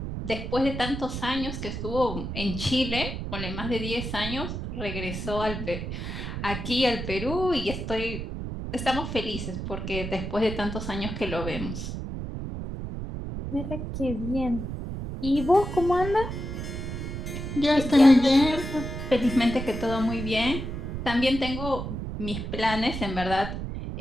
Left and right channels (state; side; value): noise; right; rumble, 5 dB below the sound